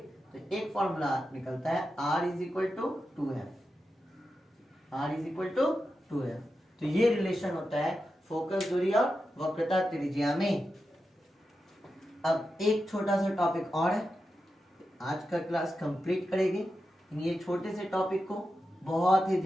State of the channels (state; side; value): normal; both; correlation 0.90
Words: तो एक फॉर्मूला निकलता है R is equal to 2F। तो ये रिलेशन होता है फोकस दूरी और वक्रता त्रिज्या में। अब एक छोटा सा टॉपिक और है, आज का क्लास कंप्लीट करेंगे। ये छोटे से टॉपिक को बहुत ही